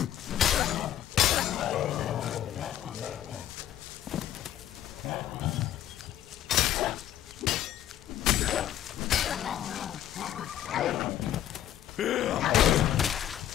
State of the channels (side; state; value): right; quieter; 11.5 dB